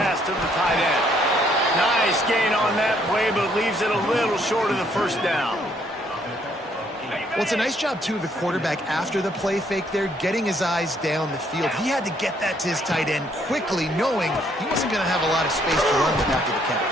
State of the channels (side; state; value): both; normal; correlation 0.68